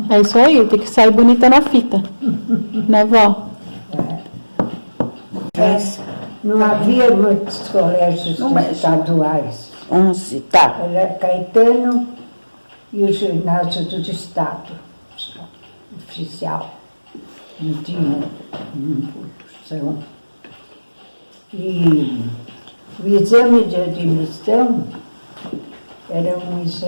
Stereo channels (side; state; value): both; inverted; correlation -1.00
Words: É isso aí, tem que sair bonita na fita. Né, vó? Não havia muitos colégios estaduais. 11, tá. Era Caetano e o ginásio do Estado, oficial. Não tinha impulsão. E o exame de admissão era um